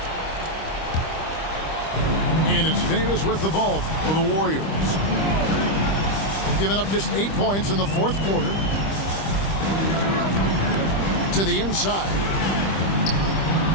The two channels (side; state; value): right; late; 25 ms